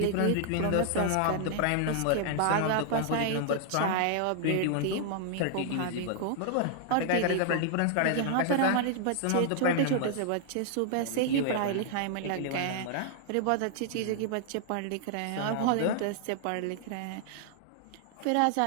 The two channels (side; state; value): both; different; correlation -0.01